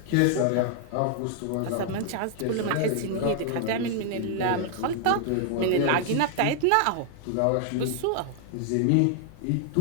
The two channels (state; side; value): different; both; correlation 0.00